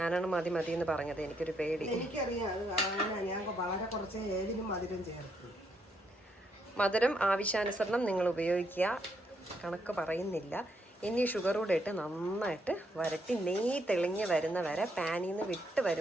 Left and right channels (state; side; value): normal; both; correlation 0.75